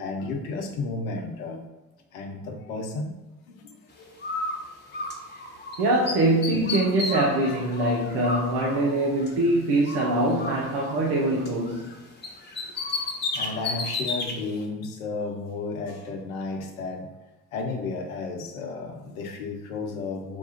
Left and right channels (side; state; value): both; normal; correlation 0.16